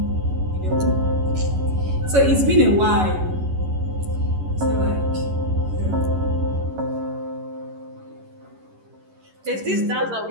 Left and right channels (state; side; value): late; left; 11 ms